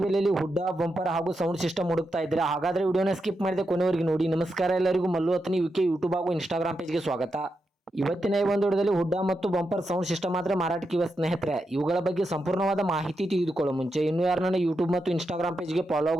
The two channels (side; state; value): both; normal; correlation 0.86